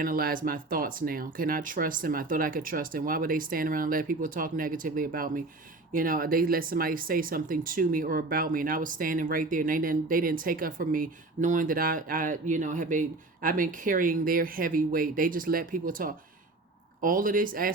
my thoughts now. Can I trust them? I thought I could trust them. Why would they stand around and let people talk negatively about me? They let somebody say something to me or about me, and I was standing right there, and they didn't take up for me, knowing that I've been carrying their heavy weight. They just let people talk. All of this,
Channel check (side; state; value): left; quieter; 3.1 dB